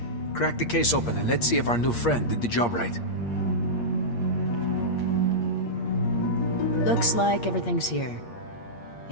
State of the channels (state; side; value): late; right; 8.6 ms